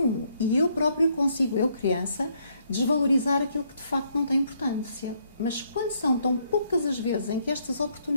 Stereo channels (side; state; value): both; inverted; correlation -0.71